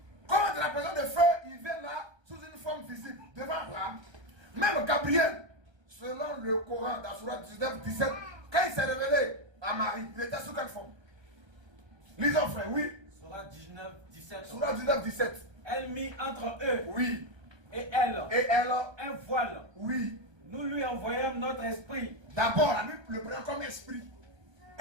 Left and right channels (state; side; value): late; left; 1.3 ms